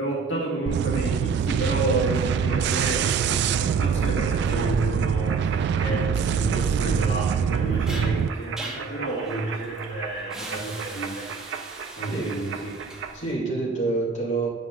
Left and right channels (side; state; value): left; quieter; 5.1 dB